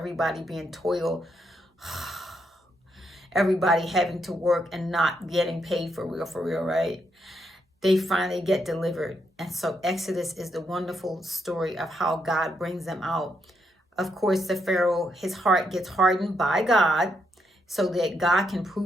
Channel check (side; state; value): both; normal; correlation 0.78